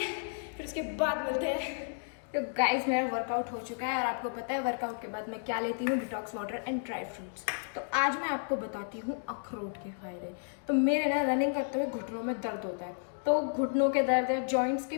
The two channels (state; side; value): silent; right; digital silence